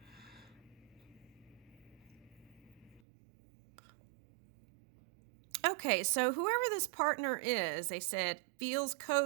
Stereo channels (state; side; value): drops out; left; at 3.0 s